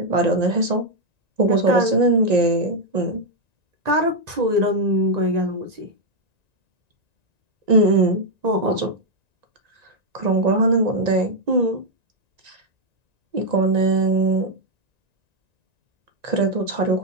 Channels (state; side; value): late; left; 1.9 ms